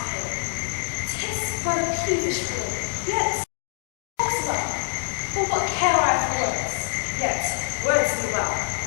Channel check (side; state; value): right; silent; digital silence